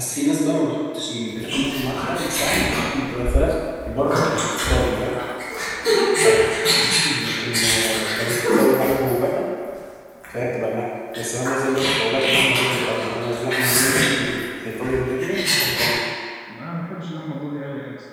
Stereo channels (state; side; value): identical; both; correlation 1.00